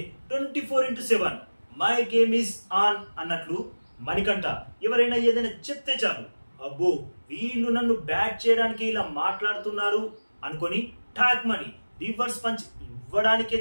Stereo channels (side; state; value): both; inverted; correlation -1.00